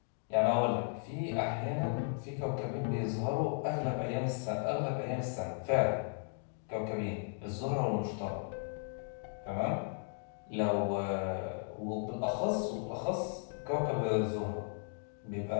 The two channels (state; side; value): silent; right; 54 dB below the other